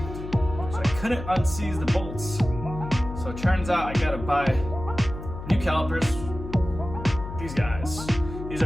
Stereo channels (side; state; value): left; noise; hum, 10 dB below the sound